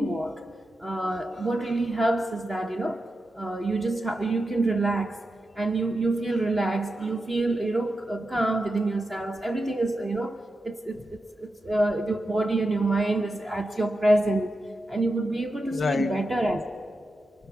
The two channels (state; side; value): normal; both; correlation 0.89